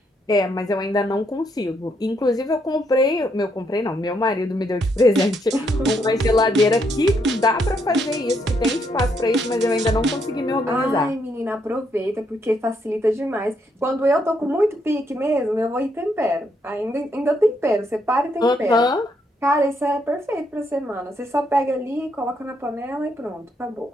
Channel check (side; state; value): both; normal; correlation 0.75